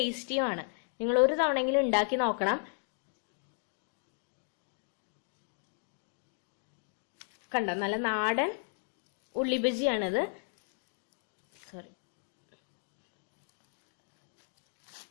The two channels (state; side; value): silent; right; digital silence